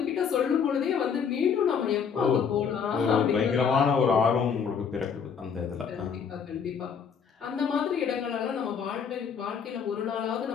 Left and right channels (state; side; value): quieter; right; 6.7 dB